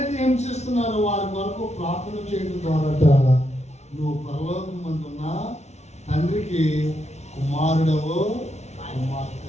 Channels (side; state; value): right; late; 0.32 ms